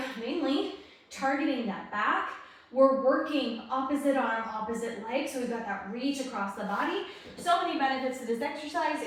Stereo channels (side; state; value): both; identical; correlation 1.00